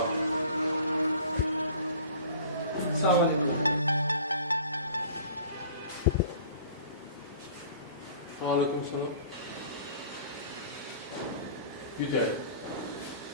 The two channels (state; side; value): inverted; both; correlation -0.46